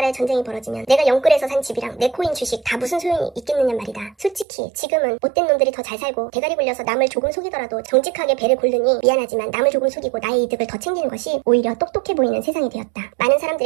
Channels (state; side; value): drops out; left; at 4.5 s